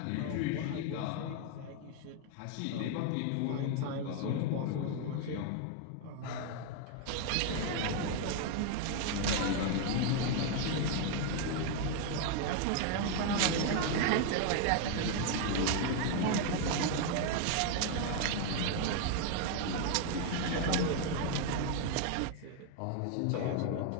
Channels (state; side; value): different; both; correlation 0.00